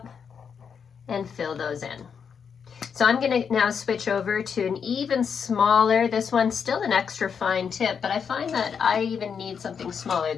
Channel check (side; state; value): right; quieter; 6.7 dB